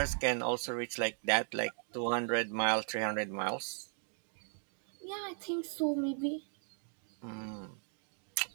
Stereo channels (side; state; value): left; silent; 53 dB below the other